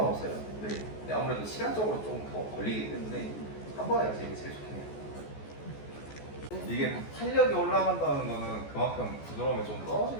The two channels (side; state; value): right; late; 14 ms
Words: 네. 근데 아무래도 시간적으로 좀 더 걸리기 때문에 한 번에 가시는 게 제일 좋긴 해요. 이게 탄력이 올라간다는 거는 그만큼 부드러움이 좀